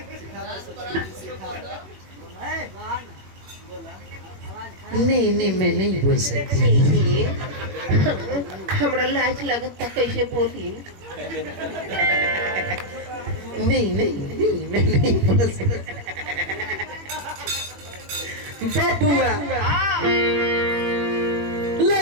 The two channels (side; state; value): left; late; 21 ms